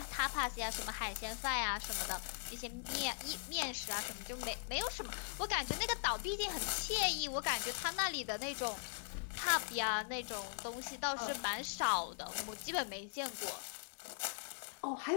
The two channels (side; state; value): right; silent; digital silence